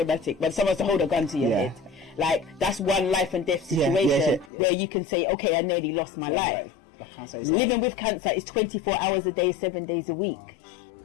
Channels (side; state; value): right; drops out; at 4.5 s